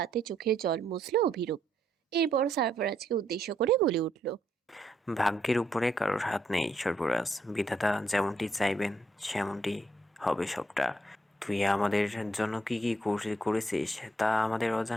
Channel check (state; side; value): normal; both; correlation 0.75